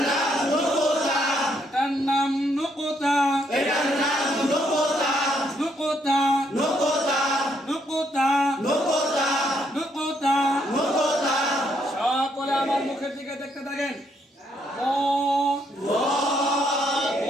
নাম নকোতা, এটার নাম নকোতা, এটার নাম নকোতা, নকোতা, নকোতা, নকোতা, নকোতা, নকোতা, নকোতা। সকলে আমার মুখের দিকে দেখতে থাকেন। ও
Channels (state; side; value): normal; both; correlation 0.73